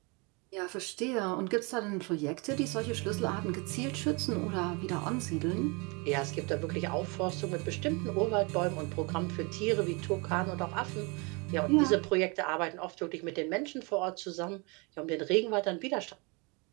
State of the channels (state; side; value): quieter; left; 30.1 dB